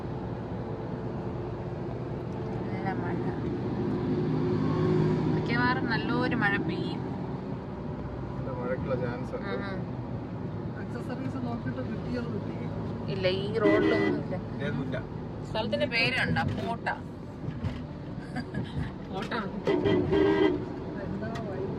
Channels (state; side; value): identical; both; correlation 1.00